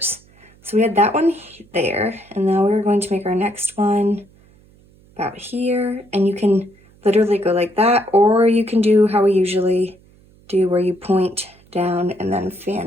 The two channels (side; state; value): right; noise; hum, 29 dB below the sound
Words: So we had that one there, and now we're going to make our next one about here, and you can literally go like that, or you can do how we usually do, where you point down and then